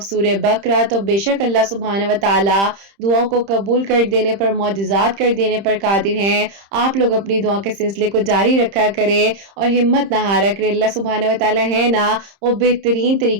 सूरह बकरा। तो बेशक अल्लाह सुब्हानहू व तआला दुआओं को कबूल कर देने पर, मौजज़ात कर देने पर कादिर हैं। आप लोग अपनी दुआ के सिलसिले को जारी रखा करें और हिम्मत ना हारा करें। अल्लाह सुब्हानहू व तआला है ना, वो बेहतरीन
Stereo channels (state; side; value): late; left; 30 ms